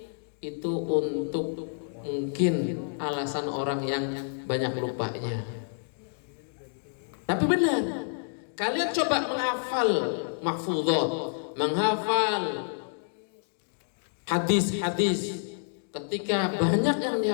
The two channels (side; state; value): right; silent; digital silence